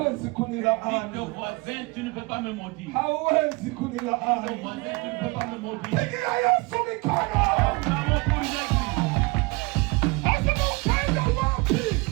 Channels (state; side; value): quieter; left; 26.3 dB